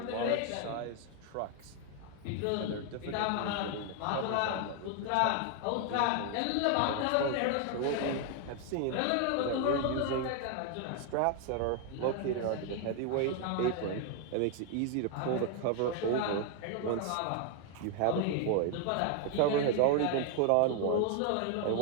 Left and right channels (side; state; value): both; different; correlation 0.01